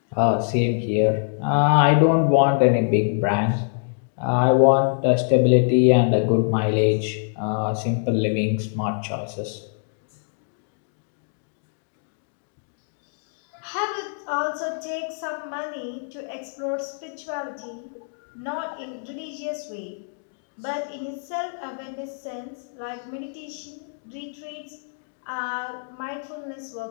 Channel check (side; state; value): right; silent; digital silence